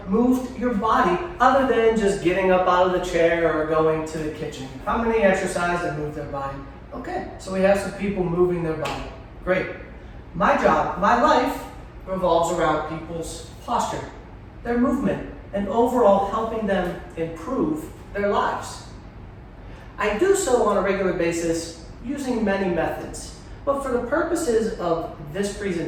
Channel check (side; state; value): both; identical; correlation 1.00